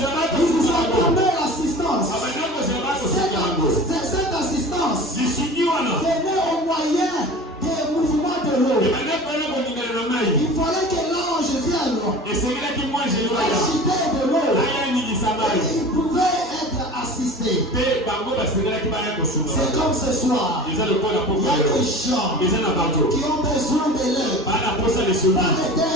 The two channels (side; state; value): both; normal; correlation 0.38